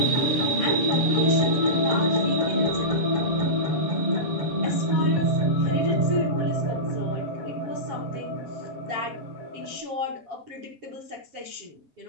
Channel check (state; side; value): late; left; 8.0 ms